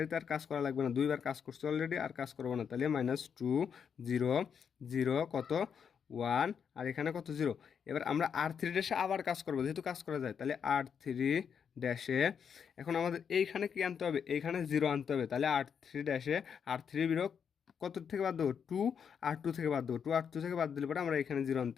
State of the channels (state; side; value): quieter; right; 7.2 dB